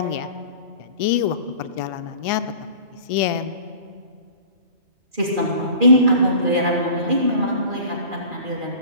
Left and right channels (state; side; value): late; left; 2.4 ms